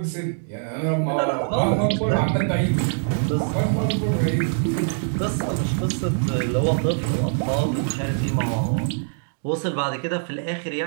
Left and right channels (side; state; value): left; silent; digital silence